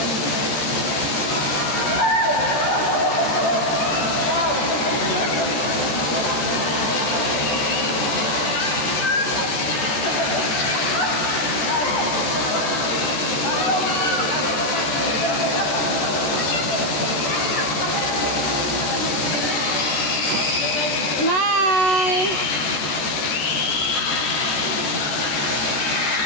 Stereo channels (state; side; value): late; right; 13 ms